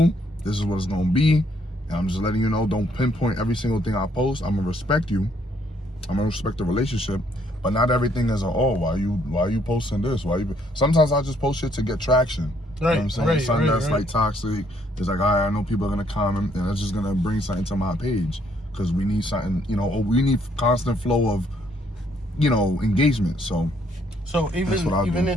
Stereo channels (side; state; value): both; normal; correlation 0.68